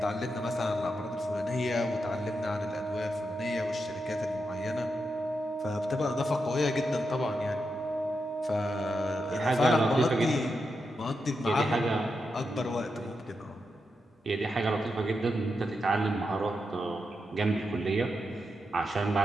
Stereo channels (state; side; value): normal; both; correlation 0.86